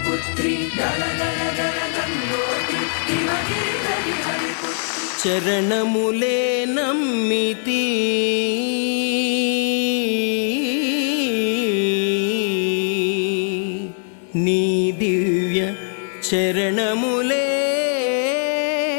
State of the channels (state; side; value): silent; right; 59 dB below the other